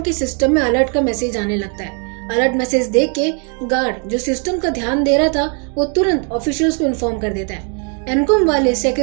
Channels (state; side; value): quieter; left; 38.3 dB